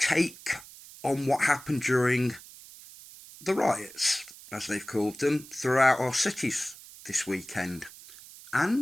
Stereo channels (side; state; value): right; noise; hiss, 18 dB below the sound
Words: on what happened during the riots, as they've called them, throughout our cities this weekend,